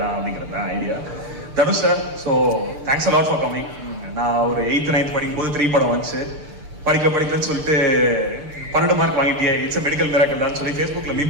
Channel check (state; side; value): late; left; 6.7 ms